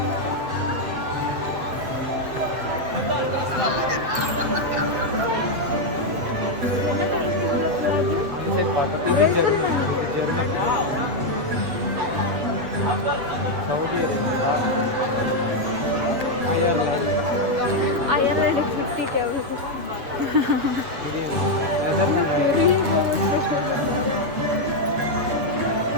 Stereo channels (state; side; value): late; left; 7.5 ms